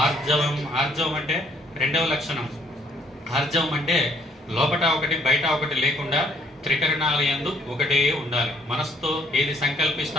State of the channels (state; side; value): normal; both; correlation 0.64